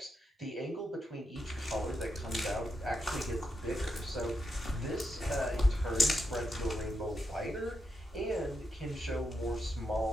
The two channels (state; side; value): normal; both; correlation 0.83